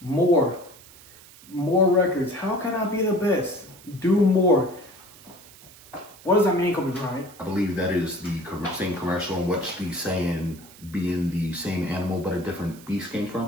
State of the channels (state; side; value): noise; right; hiss, 21 dB below the sound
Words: More records. How can I be the best? Do more. What does that mean, Kobe Bryant? I believe that is the same commercial in which the saying being the same animal but a different beast came from.